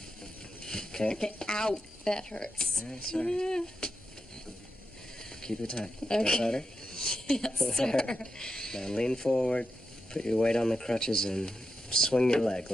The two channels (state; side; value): normal; both; correlation 0.87